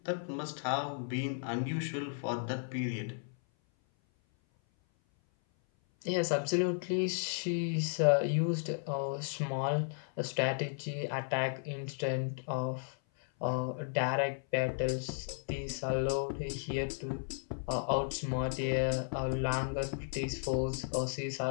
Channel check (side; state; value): right; silent; 55 dB below the other